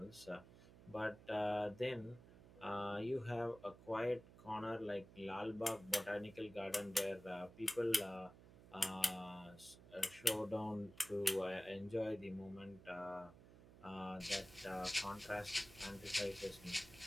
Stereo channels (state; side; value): noise; right; hum, 19 dB below the sound